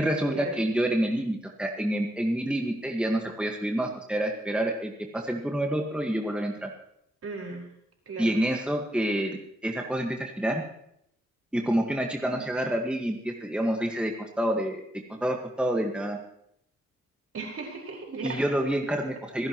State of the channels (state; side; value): normal; both; correlation 0.81